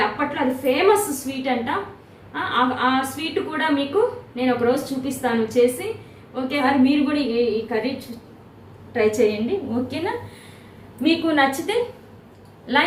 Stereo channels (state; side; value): identical; both; correlation 1.00